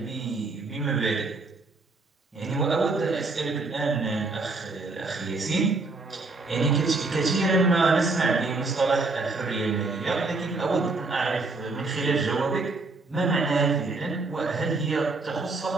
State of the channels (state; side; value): quieter; left; 3.6 dB